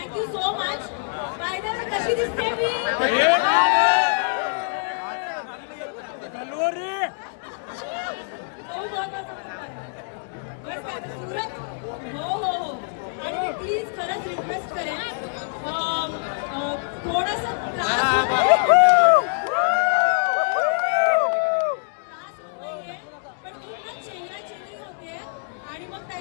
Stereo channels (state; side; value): silent; right; digital silence